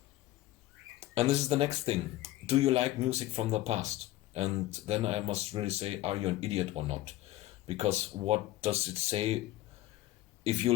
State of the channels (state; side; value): quieter; right; 15.8 dB